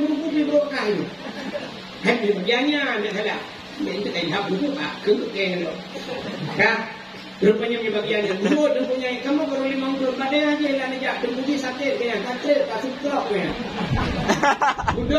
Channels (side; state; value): both; identical; correlation 1.00